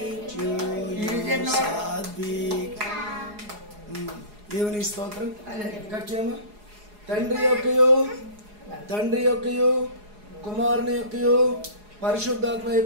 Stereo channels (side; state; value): left; late; 4.8 ms